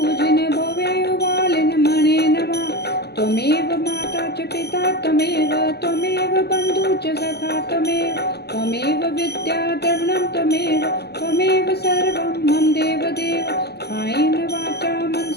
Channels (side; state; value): right; late; 0.48 ms